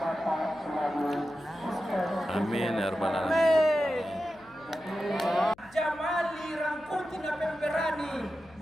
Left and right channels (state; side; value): noise; left; hum, 27 dB below the sound